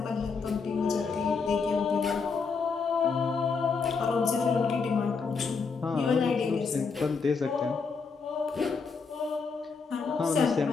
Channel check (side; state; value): right; quieter; 5.0 dB